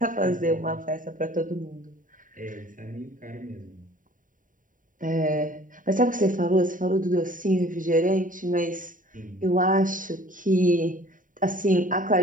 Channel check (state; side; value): late; left; 0.39 ms